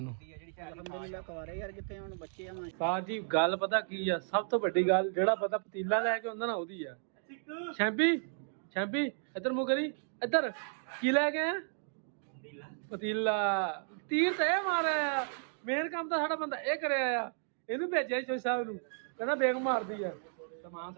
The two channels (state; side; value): silent; left; digital silence